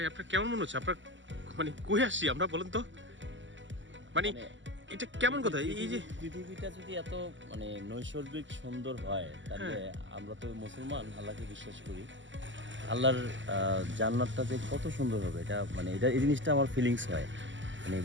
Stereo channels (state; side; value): late; left; 0.54 ms